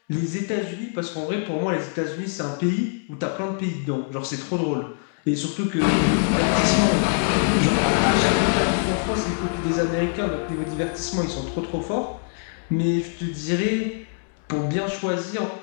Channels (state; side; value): silent; right; digital silence